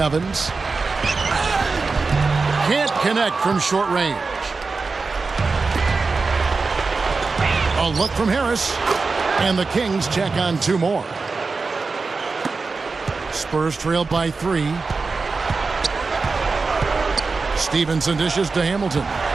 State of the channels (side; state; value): left; quieter; 4.2 dB